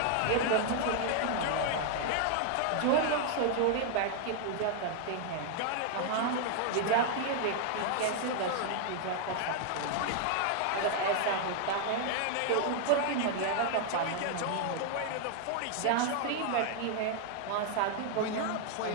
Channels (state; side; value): different; both; correlation 0.00